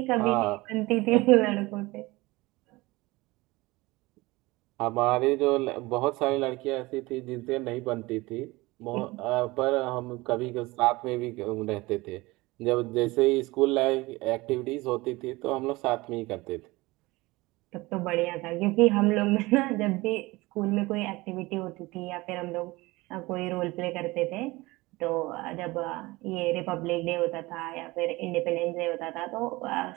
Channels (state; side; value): quieter; left; 21.5 dB